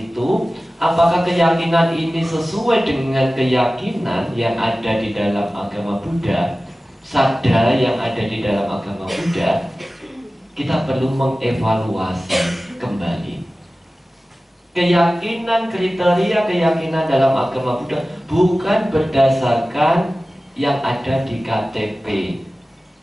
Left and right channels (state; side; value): normal; both; correlation 0.96